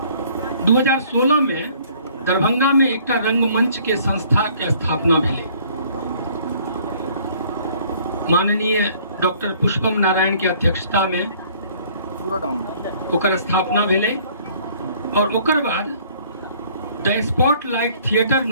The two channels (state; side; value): inverted; both; correlation -0.57